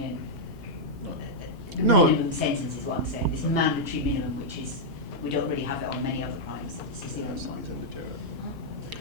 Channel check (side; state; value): both; normal; correlation -0.06